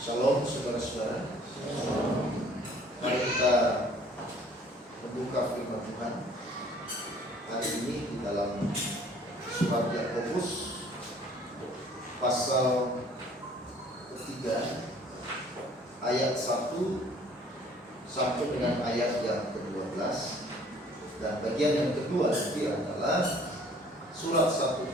Shalom saudara-saudara. Mari kita membuka firman Tuhan hari ini di dalam surat Yakobus pasal ketiga ayat 1 sampai dengan ayat yang ke-12, dan bagian yang kedua nanti adalah surat 1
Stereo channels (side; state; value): both; normal; correlation 0.55